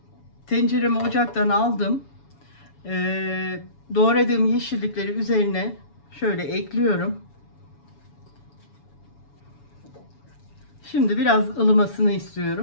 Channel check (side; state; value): right; late; 7.1 ms